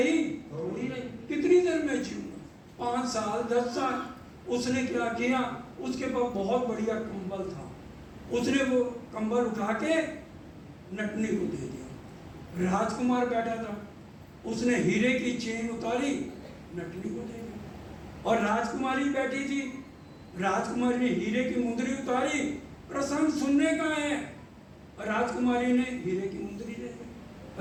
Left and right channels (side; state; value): both; identical; correlation 1.00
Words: थोड़ी रही, कितनी देर में जीऊंगा, 5 साल 10 साल। उसने क्या किया, उसके पास बहुत बढ़िया कंबल था, उसने वो कंबल उठा के नटनी को दे दिया। राजकुमार बैठा था, उसने हीरे की चेन उतारी नटनी को दे दिया। और राजकुमारी बैठी थी, राजकुमारी ने हीरे की मुंदरी उतारी, प्रसंग सुनने का है, राजकुमारी ने हीरे की मुंदरी दे